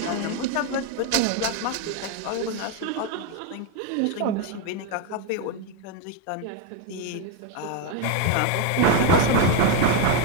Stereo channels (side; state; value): both; different; correlation 0.02